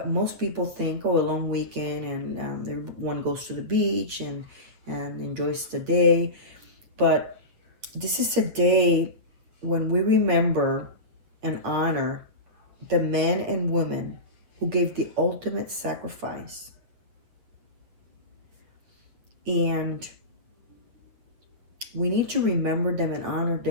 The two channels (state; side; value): late; left; 8.9 ms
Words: Most people think, oh, a long weekend, and everyone goes to the beach and enjoys the day. But this is a day when we remember and honor the men and women who gave the ultimate sacrifice And we need to remember them and honor